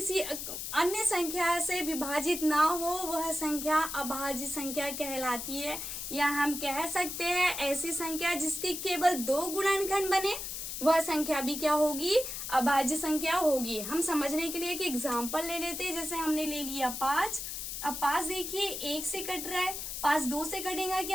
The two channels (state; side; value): noise; left; hiss, 6 dB below the sound